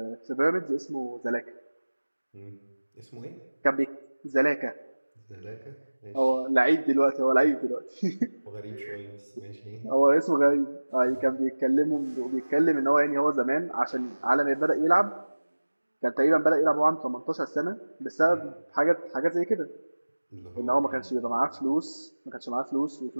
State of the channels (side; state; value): both; inverted; correlation -1.00